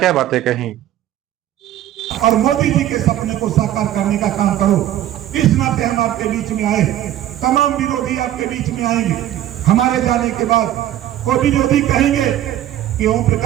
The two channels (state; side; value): quieter; left; 12.5 dB